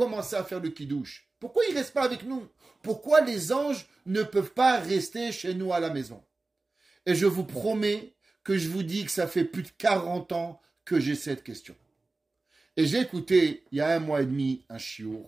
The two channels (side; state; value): left; quieter; 3.4 dB